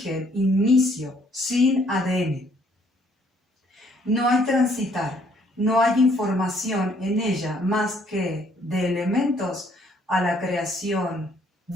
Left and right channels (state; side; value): normal; both; correlation 0.65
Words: inicio, sin ADN. No hay transitar, no hay información en ella más que de elementos a la creación,